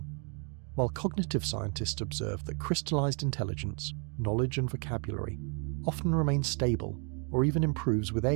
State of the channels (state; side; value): quieter; left; 37.7 dB